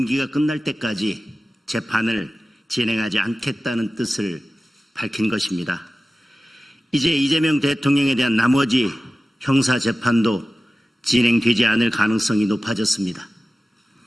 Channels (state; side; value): normal; both; correlation 0.95